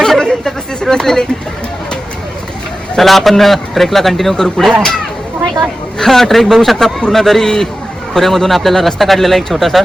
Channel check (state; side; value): normal; both; correlation 0.94